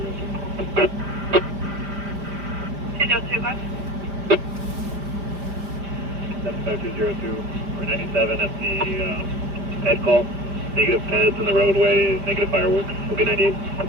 205. 75202 or 97 at the head call. Negative heads in the roadway, negative fireworks. We'll be 98.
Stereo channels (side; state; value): left; late; 5.0 ms